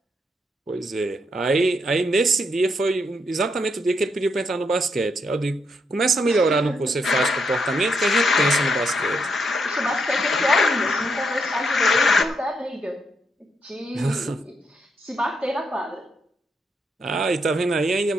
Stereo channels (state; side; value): normal; both; correlation 0.78